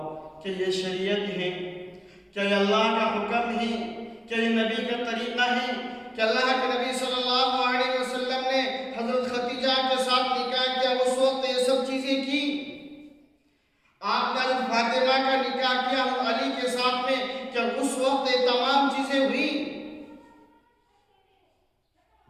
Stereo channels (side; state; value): both; identical; correlation 1.00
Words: کہ یہ شریعت ہے؟ کیا یہ اللہ کا حکم ہے؟ کیا یہ نبی کا طریقہ ہے؟ کہ اللہ کے نبی صلی اللہ علیہ وسلم نے حضرت خدیجہ کے ساتھ نکاح کیا، اس وقت یہ سب چیزیں کی؟ آپ کا حضرت فاطمہ کا نکاح کیا علی کے ساتھ میں، کیا اس وقت یہ تمام چیزیں ہوئی؟